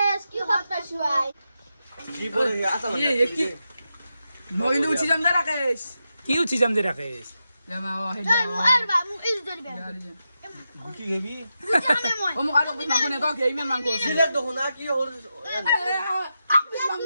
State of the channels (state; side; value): inverted; both; correlation -0.88